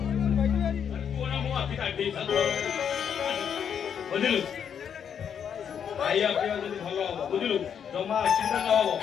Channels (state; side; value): quieter; right; 8.0 dB